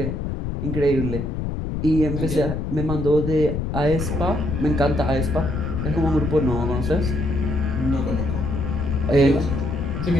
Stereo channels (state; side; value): noise; left; rumble, 2 dB below the sound